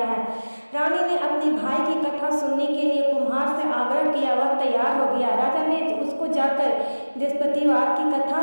है। रानी ने अपने भाई की कथा सुनने के लिए कुम्हार से आग्रह किया। वह तैयार हो गया। राजा ने उसको जाकर बृहस्पतिवार की कथा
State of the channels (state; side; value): inverted; both; correlation -1.00